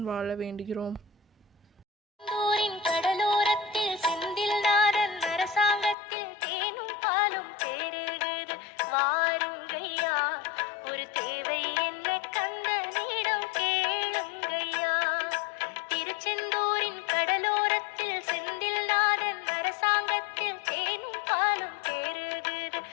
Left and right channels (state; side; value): drops out; right; at 6.0 s